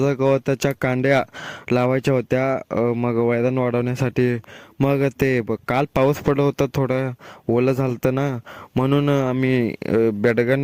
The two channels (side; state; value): both; identical; correlation 1.00